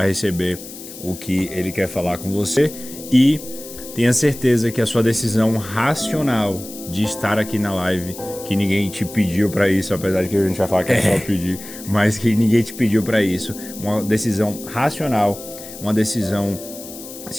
receber o que Ele quer falar com você. E tenha certeza que a sua decisão racional de estar aqui na live, que ninguém te pediu para isso, apesar de que a gente vai falar que é só pedir, mas que ninguém te pediu para isso, uma decisão racional, uma decisão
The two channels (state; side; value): noise; left; hiss, 14 dB below the sound